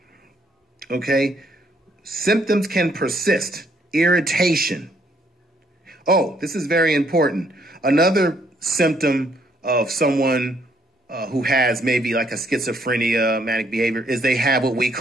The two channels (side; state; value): both; normal; correlation 0.69